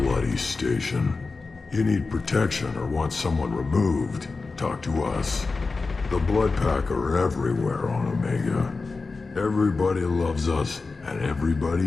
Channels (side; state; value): right; quieter; 4.0 dB